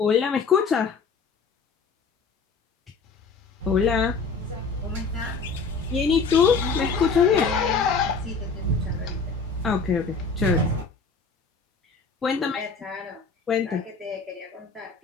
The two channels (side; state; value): right; quieter; 4.7 dB